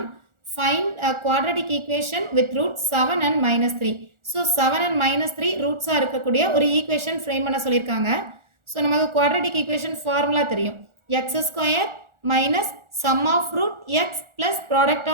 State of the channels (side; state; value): left; late; 1.4 ms